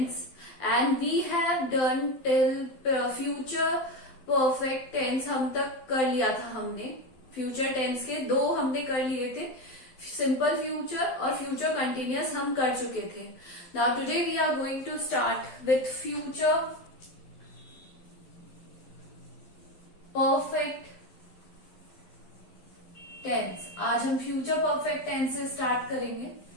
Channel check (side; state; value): right; late; 12 ms